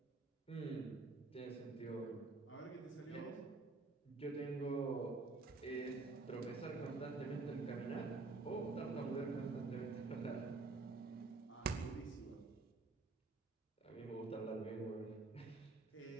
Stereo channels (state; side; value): quieter; left; 3.7 dB